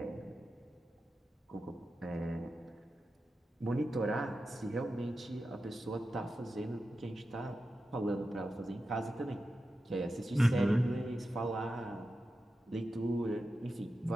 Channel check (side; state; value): both; normal; correlation 0.91